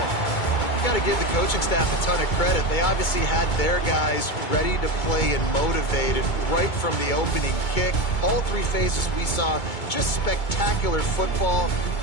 Got to give the coaching staff a ton of credit. They obviously had their guys ready to play and motivated right from the opening kick. All 3 phases we saw, just spectacular football.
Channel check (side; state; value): right; late; 2.2 ms